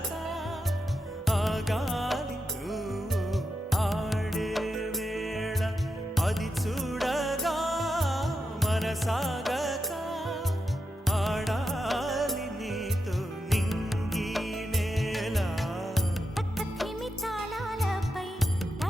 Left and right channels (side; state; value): both; normal; correlation 0.86